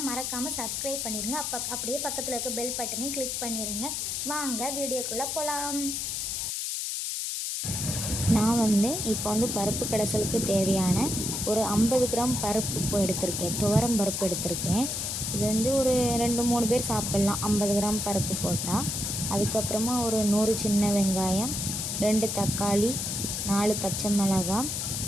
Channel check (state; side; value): noise; left; hiss, 2 dB below the sound